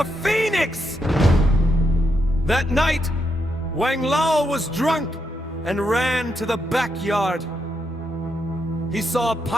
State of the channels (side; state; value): both; normal; correlation 0.81